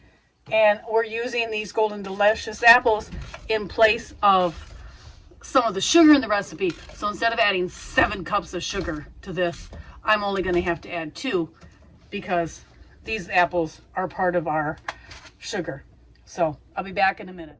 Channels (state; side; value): identical; both; correlation 1.00